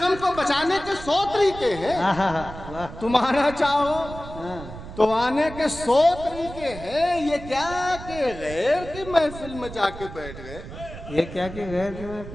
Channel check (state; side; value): noise; right; rumble, 13 dB below the sound